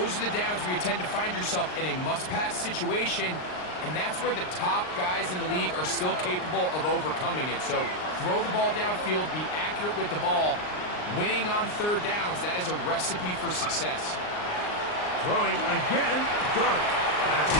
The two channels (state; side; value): late; right; 39 ms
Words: are the downs where you tend to find yourself in a must-pass situation, and that's where the top guys in the league are still capable of overcoming it. So throw the ball downfield, be accurate with the ball. Winning on 3rd downs, that is a recipe for success. Throwing again, Dart. That's